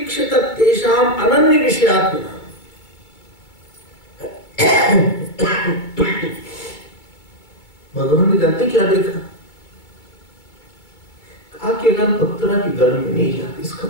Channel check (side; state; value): right; late; 2.3 ms